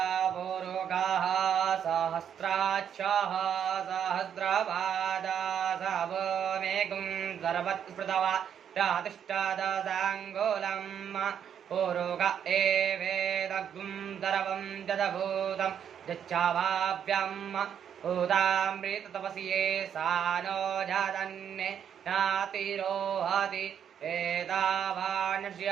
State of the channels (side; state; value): left; quieter; 8.6 dB